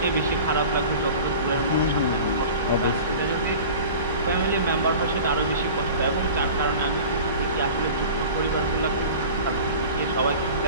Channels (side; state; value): both; inverted; correlation -0.39